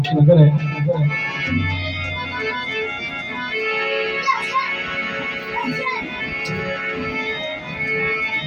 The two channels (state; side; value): identical; both; correlation 1.00